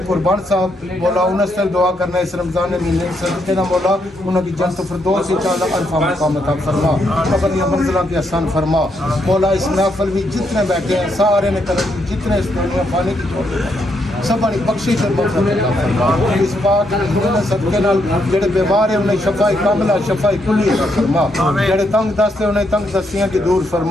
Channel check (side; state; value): both; normal; correlation 0.77